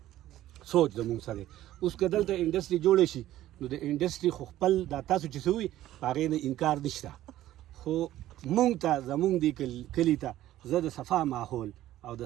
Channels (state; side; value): quieter; left; 14.0 dB